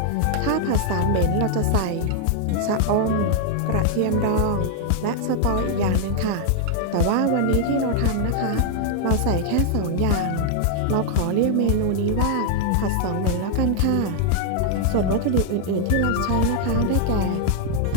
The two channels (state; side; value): different; both; correlation 0.00